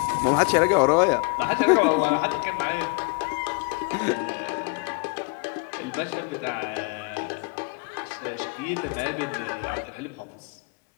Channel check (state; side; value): quieter; right; 29.7 dB